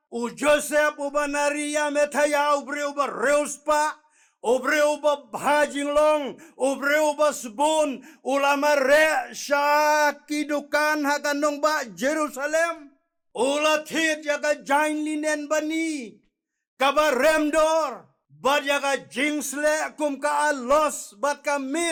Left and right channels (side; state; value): both; identical; correlation 1.00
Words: Joseph uba Maria Methaya ubreu ba reus pa obreu ba bhajing long obreu ba sebun ulama re sya kidukan hakanong ba Jerusalem ula thit yaka jain linen bani kaba remdor bat yaka jingsle kum ka alos bat